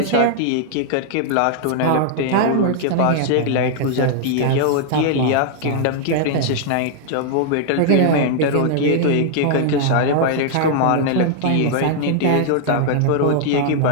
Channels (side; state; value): both; different; correlation -0.01